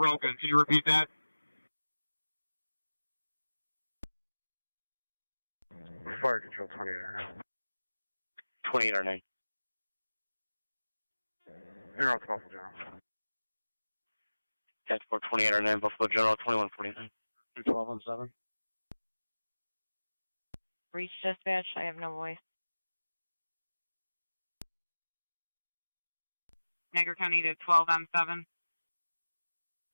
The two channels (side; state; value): both; inverted; correlation -1.00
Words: Can you repeat that? Fire control 28. 2809. You're out to Buffalo General. That's for 2809, Buffalo General 2149. 1217. Reach dispatch, I have no voice. Niagara County to 12M7.